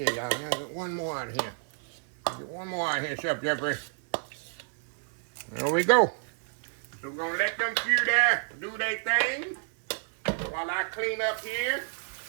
y'all. I'll get one more out of here. Get one more out of here, Chef Jeffrey. There we go. So we're going to let them few there do their thing while I clean up here.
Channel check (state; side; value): silent; left; 58 dB below the other